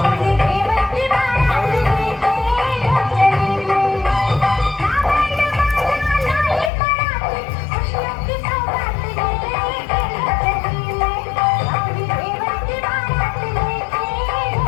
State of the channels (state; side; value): drops out; right; at 6.7 s